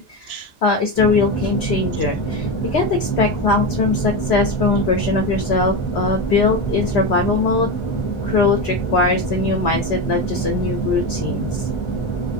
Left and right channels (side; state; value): both; normal; correlation 0.17